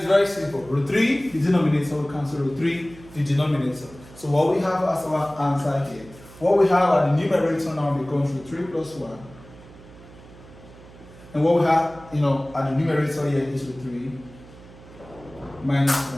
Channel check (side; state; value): right; noise; hum, 20 dB below the sound